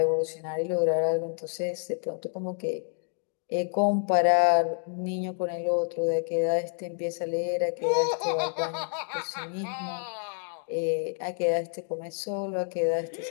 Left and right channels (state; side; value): silent; right; 59 dB below the other